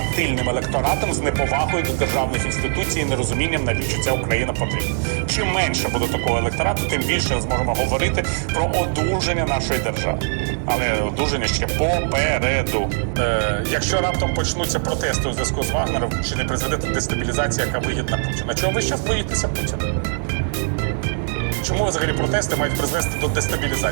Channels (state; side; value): silent; left; digital silence